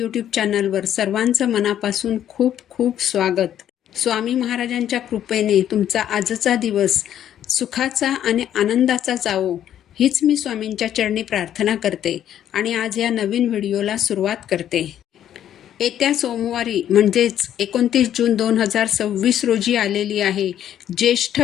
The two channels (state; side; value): quieter; right; 10.7 dB